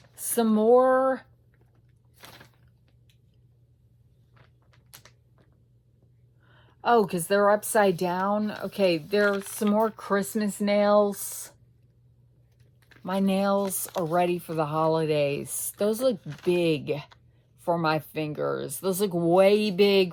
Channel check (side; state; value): both; identical; correlation 1.00